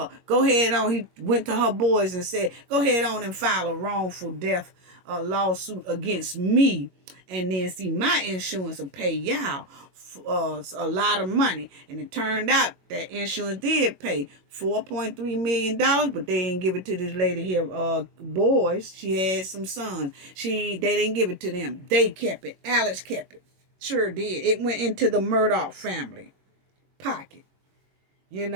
go ahead on. He went to her boys and said, go ahead on and file a wrongful death lawsuit against me. And then see, my insurance will pay y'all a lot of money. And it turned out that insurance did pay $4.3 million, but they didn't give it to this lady here, boys. She had some sons. They didn't give it to them. They kept it. Alex kept it. Sure did. It went into the Murdaugh family pocket.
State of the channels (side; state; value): left; late; 21 ms